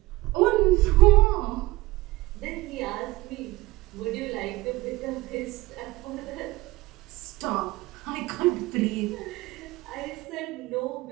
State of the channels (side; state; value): left; quieter; 19.9 dB